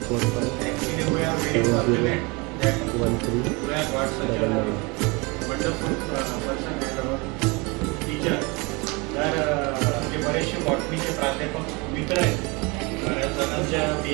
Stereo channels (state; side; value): quieter; left; 27.4 dB